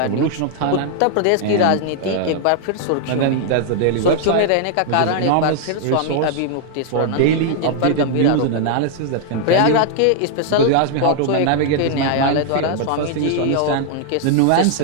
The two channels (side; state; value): both; different; correlation 0.00